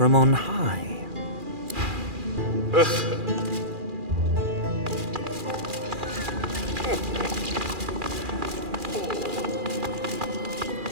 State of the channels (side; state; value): left; late; 2.4 ms